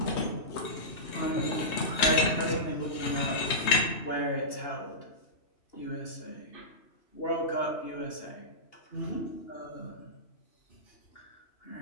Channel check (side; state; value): right; late; 3.2 ms